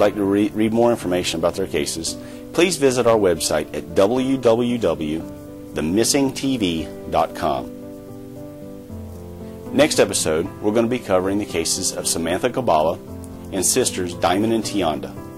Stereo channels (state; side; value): identical; both; correlation 1.00